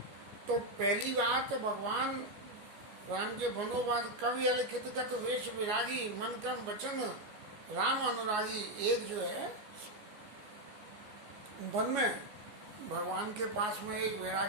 तो पहली बार तो भगवान राम के बनोवाद कवि अलिखित गत वेश विरागी मन क्रम वचन राम अनुरागी, एक जो है वन में भगवान के पास में एक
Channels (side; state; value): left; late; 14 ms